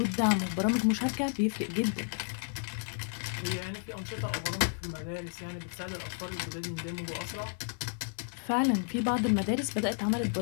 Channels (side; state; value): right; silent; 56 dB below the other